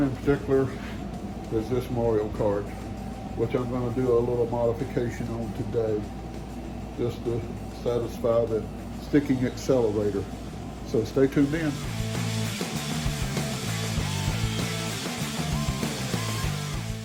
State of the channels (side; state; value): both; identical; correlation 1.00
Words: in particular is this Mario Kart, which I'm going to do a little modification on today, just to satisfy the sticking accelerator. So stay tuned in.